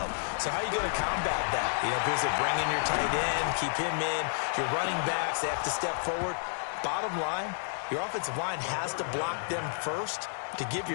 So how are you going to combat that? You know, because they bring in your tight end, keep him in, your running backs, they have to step forward. Bottom line, your offensive line has to block them first to give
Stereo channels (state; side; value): silent; right; digital silence